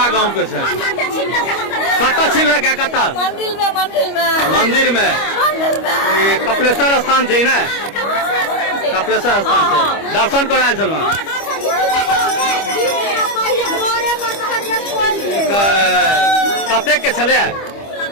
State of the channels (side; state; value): right; late; 25 ms